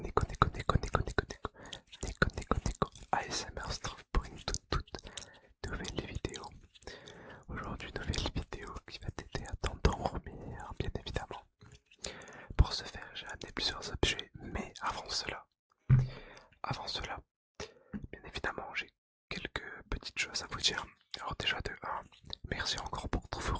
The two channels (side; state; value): both; identical; correlation 1.00